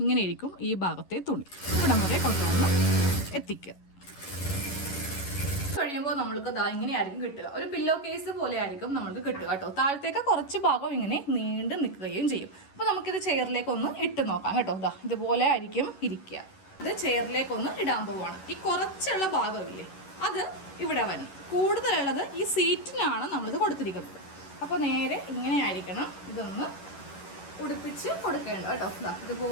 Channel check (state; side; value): late; right; 11 ms